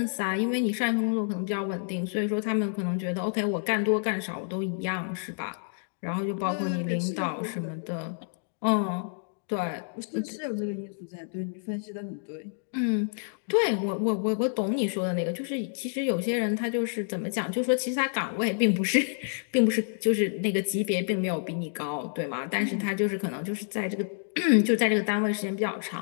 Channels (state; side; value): silent; right; digital silence